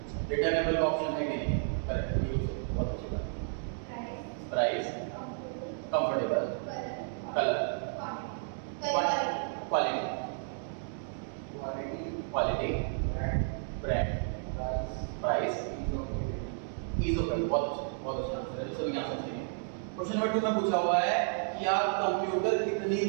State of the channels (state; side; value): silent; left; digital silence